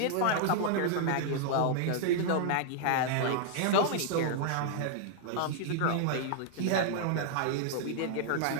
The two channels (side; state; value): both; different; correlation -0.01